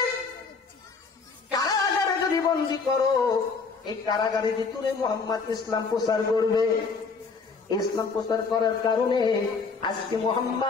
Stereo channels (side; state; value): right; quieter; 4.8 dB